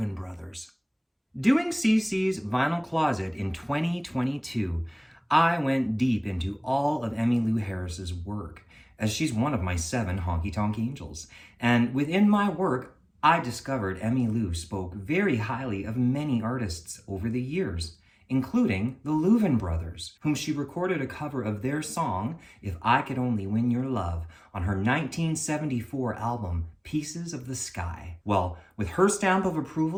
Brothers. Doing CC's Vinyl Closet in 2022, I went deep into all of Emmylou Harris's work, as she's one of my 7 honky-tonk angels. And within my work, I discovered Emmylou spoke very highly of many artists over the years, including the Louvin Brothers, whom she recorded a cover of their song, If I Could Only Win Your Love, on her 1974 album, Pieces of the Sky. Well, with her stamp of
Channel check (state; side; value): identical; both; correlation 1.00